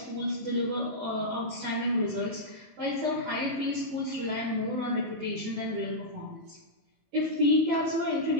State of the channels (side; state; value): left; late; 19 ms